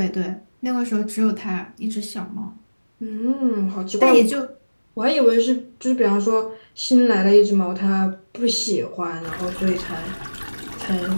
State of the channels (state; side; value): inverted; both; correlation -1.00